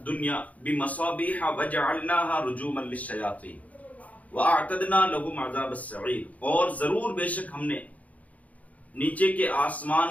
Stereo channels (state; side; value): late; right; 0.071 ms